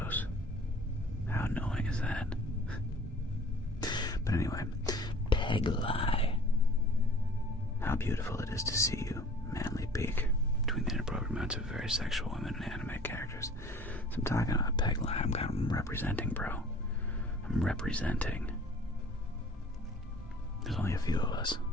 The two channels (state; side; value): normal; both; correlation 0.49